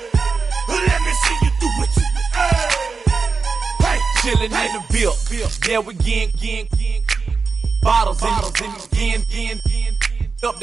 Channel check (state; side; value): quieter; left; 4.8 dB